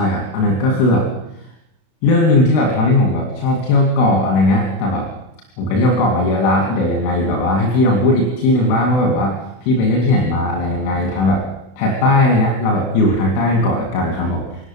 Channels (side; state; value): right; late; 32 ms